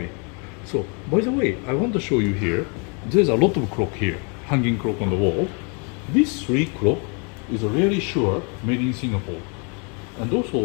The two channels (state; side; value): quieter; right; 35.7 dB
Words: So, by the way, I want to show you here, there's a lot of clock here, hanging clock on the wall. This 3 clock is really sure made in Singapore. And